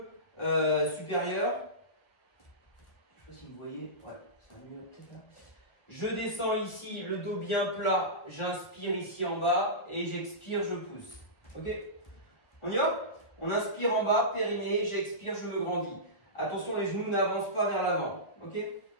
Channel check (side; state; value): right; late; 1.4 ms